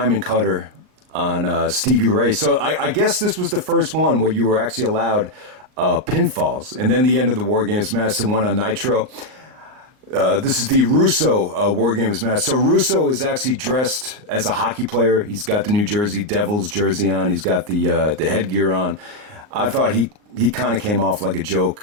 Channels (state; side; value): late; left; 38 ms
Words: cutter on Stevie Ray. So I guess this was the first one where you were actually allowed pinfalls. And then the end of the War Games match, the one on Nitro. This is the Russo War Games match. So Russo is actually dressed as a hockey player. He's got the New Jersey Devils jersey on. He's got the headgear on. I thought he kind of came off like a